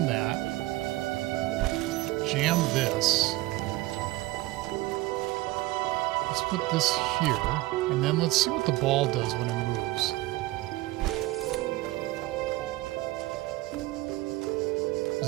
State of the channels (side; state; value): left; quieter; 18.6 dB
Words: that. Jam this. Let's put this here, and then let's see what the ball does when it moves.